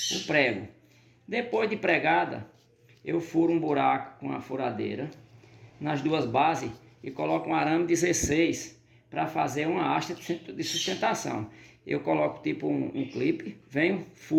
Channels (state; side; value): identical; both; correlation 1.00